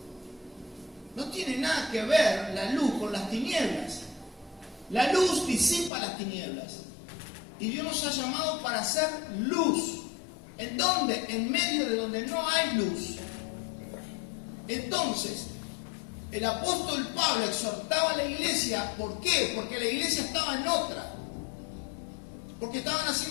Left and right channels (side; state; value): right; drops out; at 5.9 s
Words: No tiene nada que ver la luz con las tinieblas. La luz disipa las tinieblas. Y Dios nos ha llamado para hacer luz. ¿En dónde? En medio de donde no hay luz. Entonces, el apóstol Pablo exhortaba a la iglesia. ¿Por qué? Porque la iglesia estaba en otra. Porque estaban